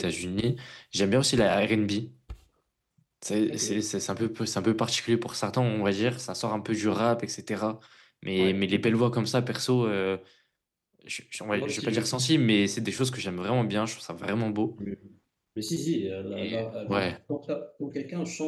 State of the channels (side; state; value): both; identical; correlation 1.00